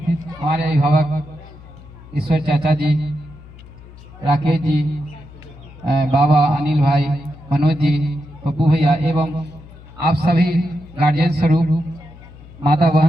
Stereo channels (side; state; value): left; noise; hum, 19 dB below the sound